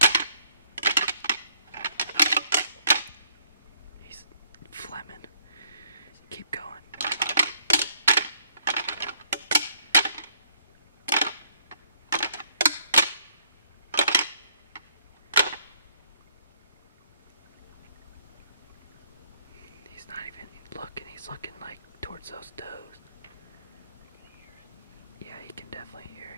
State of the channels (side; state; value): both; inverted; correlation -0.66